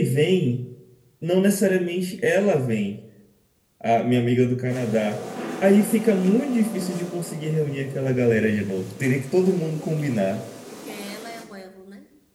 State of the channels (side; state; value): both; identical; correlation 1.00